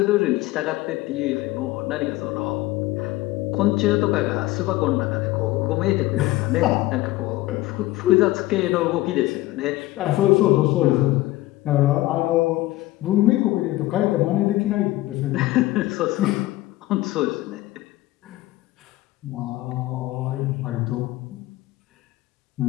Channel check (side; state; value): right; quieter; 17.7 dB